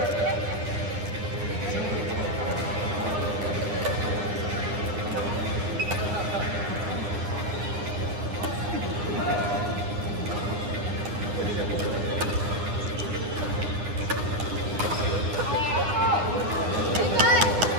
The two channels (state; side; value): late; left; 9.8 ms